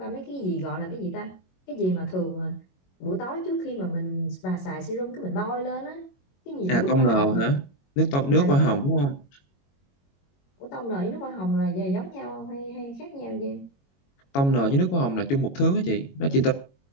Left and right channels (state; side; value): late; right; 22 ms